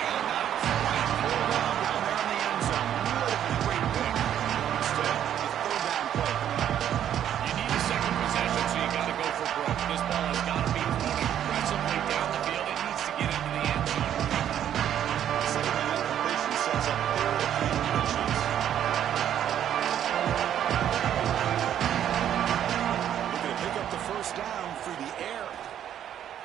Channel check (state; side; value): quieter; left; 10.3 dB